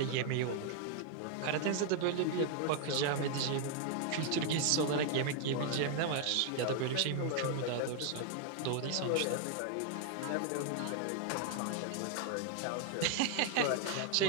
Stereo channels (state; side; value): different; both; correlation 0.00